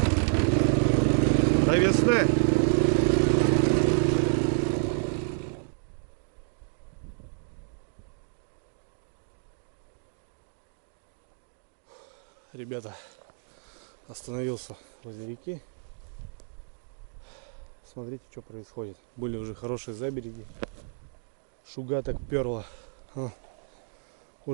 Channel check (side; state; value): left; silent; digital silence